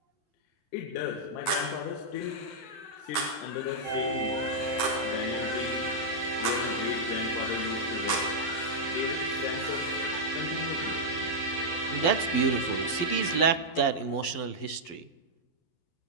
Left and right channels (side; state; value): right; late; 12 ms